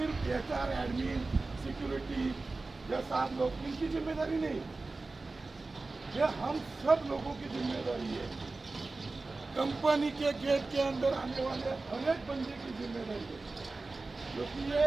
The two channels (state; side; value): quieter; left; 3.5 dB